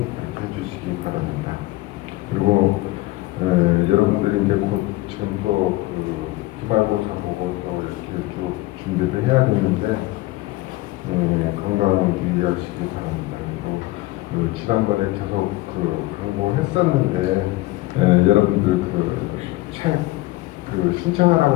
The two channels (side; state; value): right; quieter; 19.0 dB